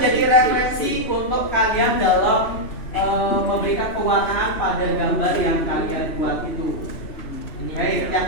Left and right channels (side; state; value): right; late; 3.0 ms